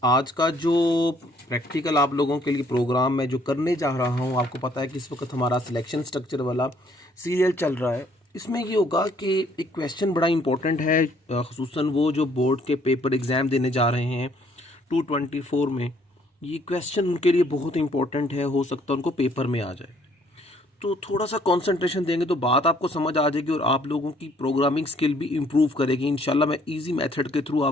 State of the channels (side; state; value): both; normal; correlation 0.64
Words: आज का जो प्रैक्टिकल आप लोगों के लिए प्रोग्राम मैं जो करने जा रहा हूँ, आपको पता है कि इस वक्त हमारा सिलेक्शन स्ट्रक्चर वाला सीरियल चल रहा है। इसमें ये होगा कि एक क्वेश्चन बड़ा इंपॉर्टेंट है, ख़ुसूसन वो जो बोर्ड के पेपर एग्ज़ाम देने जा रहे हैं 224 में। ये क्वेश्चन उनके लिए बहुत इंपॉर्टेंट है, हो सकता है उनको पेपर में आ जाए। तो थोड़ा सा कंसंट्रेशन देंगे तो बात आपको समझ आ जाएगी और आप लोगों की प्रोग्रामिंग स्किल भी इम्प्रूव करेगी इंशाल्लाह। मैं इजी मेथड के थ्रू